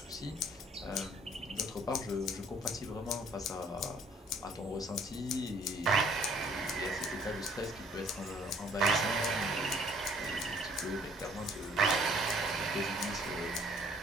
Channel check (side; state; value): both; normal; correlation 0.59